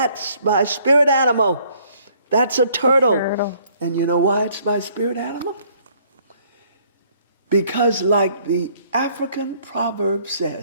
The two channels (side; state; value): both; inverted; correlation -0.63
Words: my spirit animal. That's a turtle. And you know why it's my spirit animal? Because like the African proverb